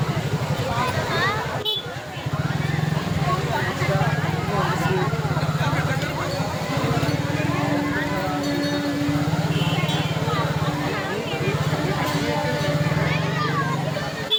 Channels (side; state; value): both; identical; correlation 1.00